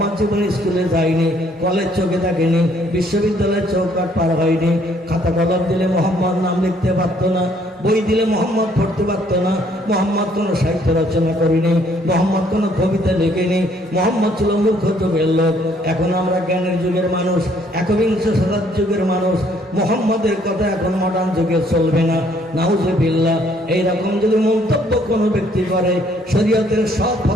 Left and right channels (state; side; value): normal; both; correlation 0.64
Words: জীবনে স্কুলে যায়নি, কলেজ চোখে থাকেনি, বিশ্ববিদ্যালয়ের চৌকাট পার হয়নি, খাতা কলম দিলে মোহাম্মদ নাম লিখতে পারতো না, বই দিলে মোহাম্মদ পড়তে পারতো না, মোহাম্মদ কোনো সাহিত্য রচনা করেনি, মোহাম্মদ কোনো কবিতা লিখেনি, মোহাম্মদ ছিল মূর্খ যুগের লোক। এখন আমরা জ্ঞানের যুগের মানুষ, একবিংশ শতাব্দীর যুগের মানুষ, মোহাম্মদের কথা এখন মডার্ন যুগে চলবে না। নাউজুবিল্লাহ। এইরকম যদি মন্তব্য কোনো ব্যক্তি করে, শরীয়তের সব